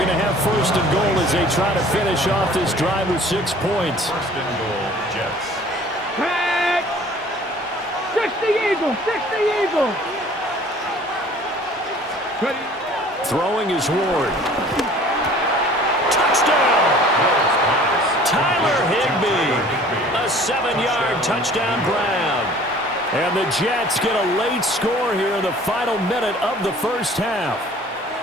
to have 1st and goal as they try to finish off this drive with 6 points. 1st and goal, Jets. Back. 60 Eagles. 60 Eagles. Ready. Throwing is Ward. Touchdown! Tyler Higbee. A 7-yard touchdown Brown. And the Jets get a late score here in the final minute of the first half.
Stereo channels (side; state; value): both; normal; correlation 0.50